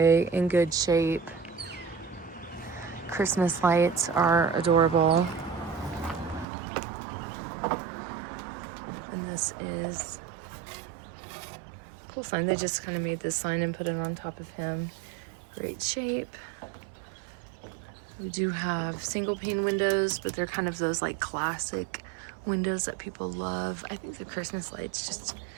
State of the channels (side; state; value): left; drops out; at 6.5 s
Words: in good shape. Christmas lights are adorable. And this is a cool sign. They just kind of made this sign and put it on top of him. Great shape. We do have single pane windows, but they're kind of those like classic windows that people love. I think the Christmas lights just